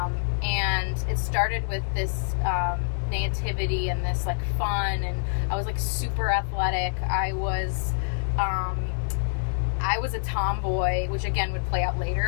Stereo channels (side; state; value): right; silent; digital silence